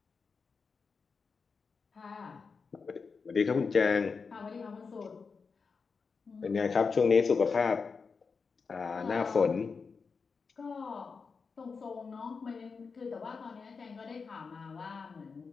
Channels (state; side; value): quieter; right; 5.1 dB